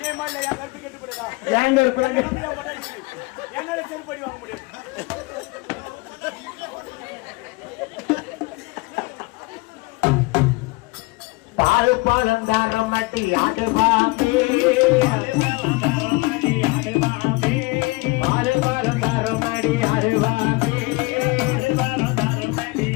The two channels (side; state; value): right; quieter; 24.9 dB